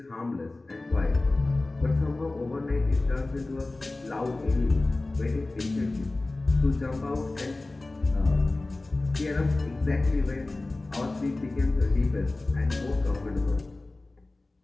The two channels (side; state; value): right; quieter; 3.0 dB